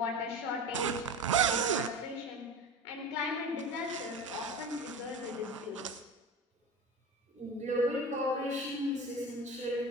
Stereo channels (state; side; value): normal; both; correlation 0.30